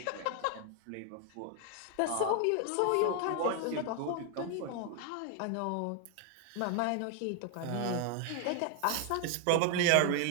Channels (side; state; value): both; different; correlation 0.00